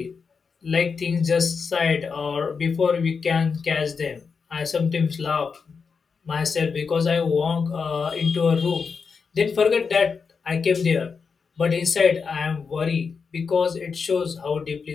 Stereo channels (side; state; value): right; quieter; 5.4 dB